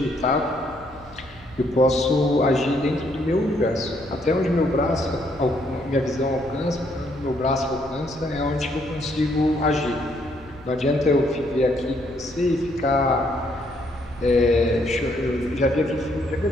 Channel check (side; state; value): left; noise; hum, 24 dB below the sound